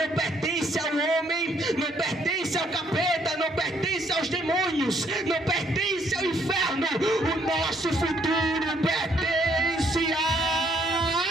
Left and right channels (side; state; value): both; normal; correlation 0.68